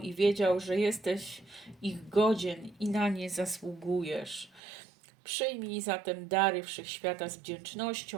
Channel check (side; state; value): left; drops out; at 4.6 s